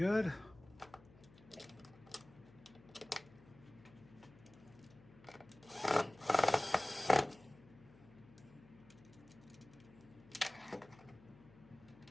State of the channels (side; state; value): left; noise; hum, 23 dB below the sound